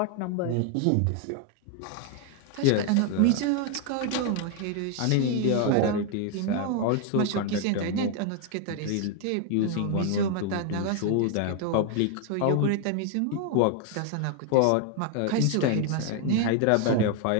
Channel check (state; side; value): different; both; correlation 0.01